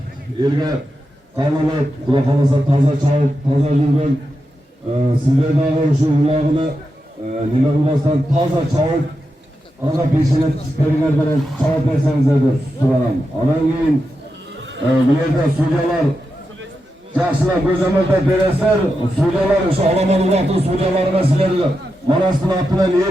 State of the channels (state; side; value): normal; both; correlation 0.88